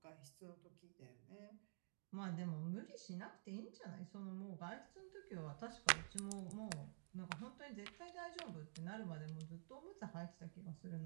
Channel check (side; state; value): left; silent; digital silence